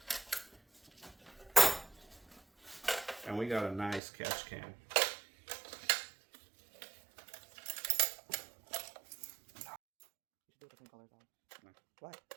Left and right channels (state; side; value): drops out; left; at 4.0 s